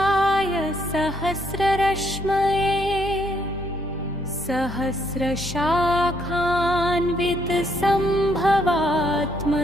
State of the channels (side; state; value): both; normal; correlation 0.71